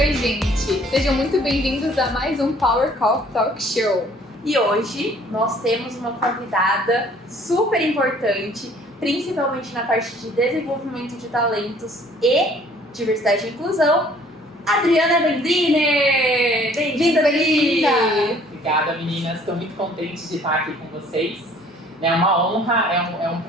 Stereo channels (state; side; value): normal; both; correlation 0.56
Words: gente! Sejam muito bem-vindos a mais um Power Coffee Talk Show. E hoje nós temos uma convidada super importante, principalmente na parte de desenvolvimento de talentos e diversidade e inclusão, Adriana Vendriner! Bem-vinda, Adri! Obrigada, meninas. Estou muito contente de estar aqui com vocês. É uma honra, é um